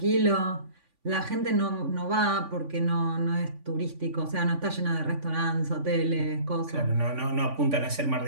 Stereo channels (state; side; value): late; left; 3.5 ms